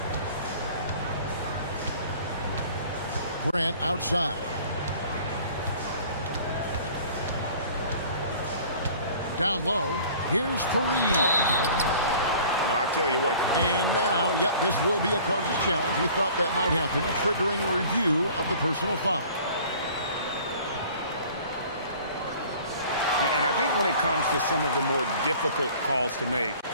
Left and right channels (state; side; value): inverted; both; correlation -0.48